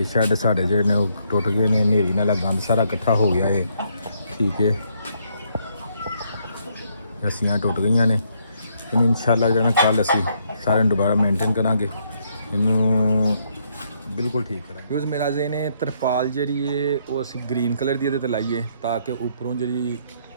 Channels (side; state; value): both; inverted; correlation -0.73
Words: शैड साढ़े जो ने टुट गए ने, हनेरी नाल गंद सारा इकट्ठा हो गया है, ठीक है। रस्सियाँ टुट गई ने। इन्हूं इंशाअल्लाह जो है कल असी सारे दोबारा मेनटेन करांगे, इनू बिल्कुल ठीक करा। यूज़ मेरा जे ने तरपाल जी है वो असी ग्रीन कलर की ये लाइए ताकि उपरों जी